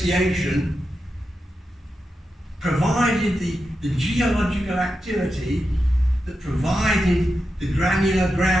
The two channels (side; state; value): both; normal; correlation 0.89